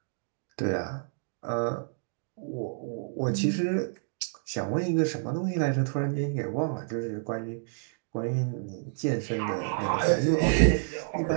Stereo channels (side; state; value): left; silent; digital silence